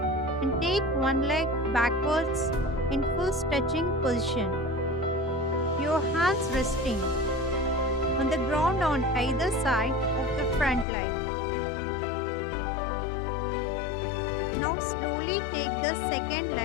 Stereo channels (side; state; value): right; drops out; at 10.9 s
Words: and take one leg backwards in full stretching position. Your hands resting on the ground on either side of the front leg. Now slowly take the second